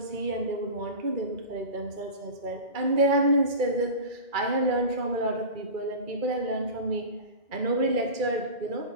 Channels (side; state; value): left; late; 2.3 ms